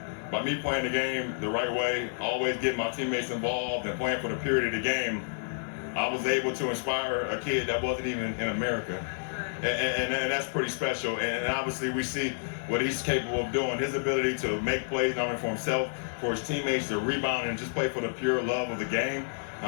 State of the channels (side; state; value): right; silent; 58 dB below the other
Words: by me playing the game the right way, always getting my teammates involved and playing for the purity of the game, I was able to inspire a kid that wasn't even in America. And that's pretty special. And obviously we see what he's capable of doing. His ability to make plays not only for himself, for his teammates, to rebound and just play for the pure love of the game.